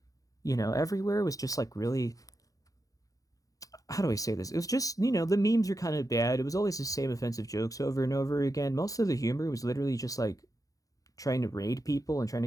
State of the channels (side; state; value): right; late; 0.17 ms